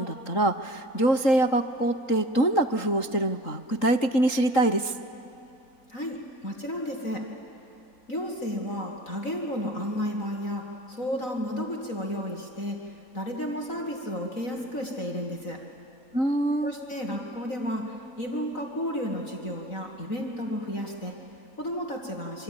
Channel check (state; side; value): late; right; 3.8 ms